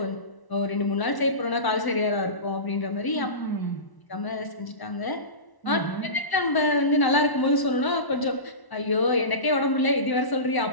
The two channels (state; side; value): late; right; 1.0 ms